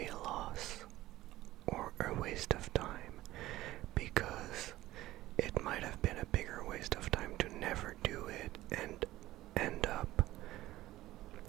loss or a waste of time, because it might have been a bigger waste of time to never do it and end up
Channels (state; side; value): quieter; left; 16.2 dB